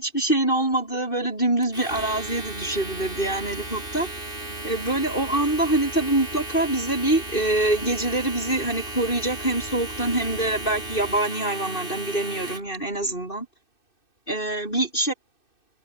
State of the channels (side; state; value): right; late; 2.6 ms